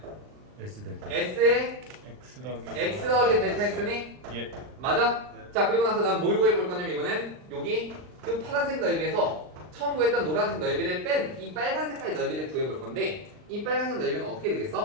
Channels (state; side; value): late; left; 39 ms